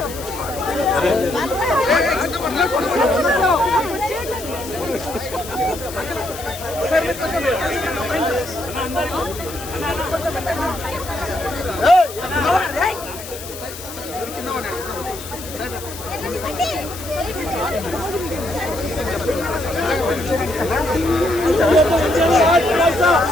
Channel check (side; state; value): left; noise; hiss, 12 dB below the sound